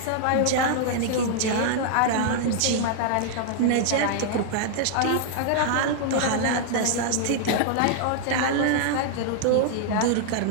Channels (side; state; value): both; different; correlation -0.01